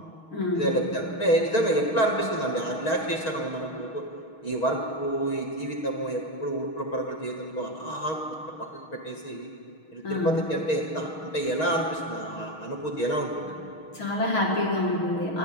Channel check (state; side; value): late; right; 6.3 ms